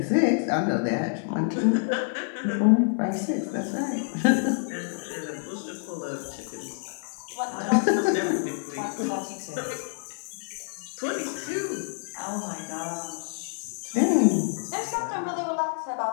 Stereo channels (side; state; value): right; silent; digital silence